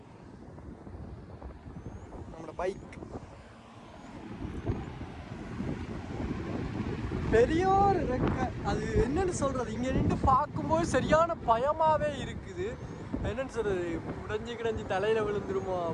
நம்மளோட பைக் பெரிய ஒரு ரெக்கை, அது என்னன்னு சொல்றது, இங்க நின்று பார்க்கும்போது சரியான பயமாவே இருக்குது. என்னன்னு சொல்றது, உடைஞ்சு தலையில விழுந்துருமோ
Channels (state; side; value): identical; both; correlation 1.00